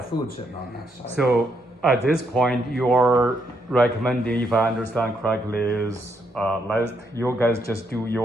food sitting on that side. So at this point, you're recommending, if I understand correctly, is let you guys just do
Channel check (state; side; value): normal; both; correlation 0.76